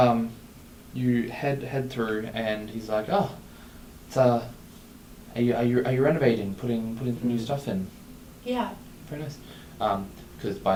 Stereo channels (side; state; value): both; identical; correlation 1.00